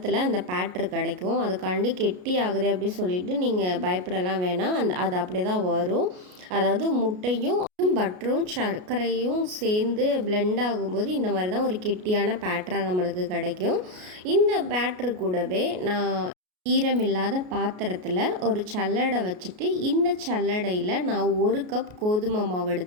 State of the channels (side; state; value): left; late; 33 ms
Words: அந்த பேட்டர் கிடைக்கும். அதுக்காண்டி கெட்டி ஆகுது அப்படின்னு சொல்லிட்டு நீங்கள் பயப்படலாம் வேணாம். அது அப்படியே தான் வரும். அதாவது முட்டையும் பட்டரும் சர்க்கரையும் சேர்ந்து பிளெண்ட் ஆகும்போது இந்த மாதிரி தான் ஒரு கெட்டியான பேட்டராக நம்மளுக்கு கிடைக்கும். இந்த பேட்டரு கூடவே நான் ஈரமில்லாத பாத்திரத்தில் ஒரு சல்லடை வச்சுட்டு இந்த சல்லடையில் நான் 1 கப் கோதுமை மாவு